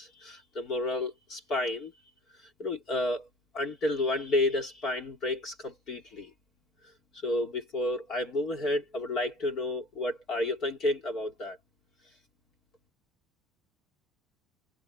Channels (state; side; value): normal; both; correlation 0.43